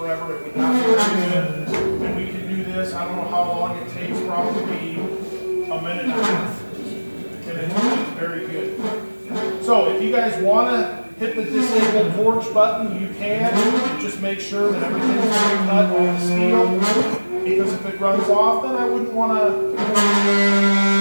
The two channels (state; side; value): inverted; both; correlation -1.00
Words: It would not be very good. And we can do this. I don't know how long it takes. Probably a minute and a half. And it's very good. So if you guys want to hit the disable torch button, you can. Just make sure that everything's being cut on the steel. Because if it runs off, then I wouldn't want to.